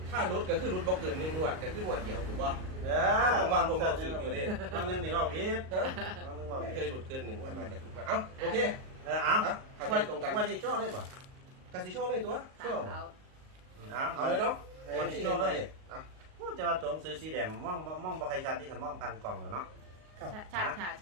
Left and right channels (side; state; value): left; late; 38 ms